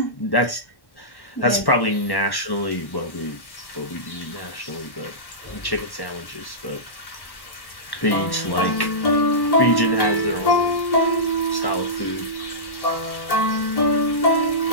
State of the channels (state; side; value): late; right; 1.1 ms